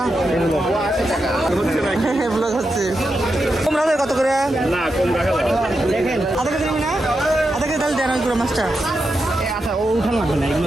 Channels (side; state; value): both; normal; correlation 0.87